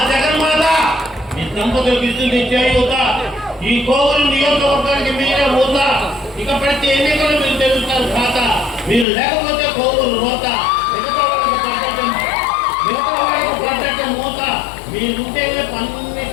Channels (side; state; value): right; drops out; at 9.1 s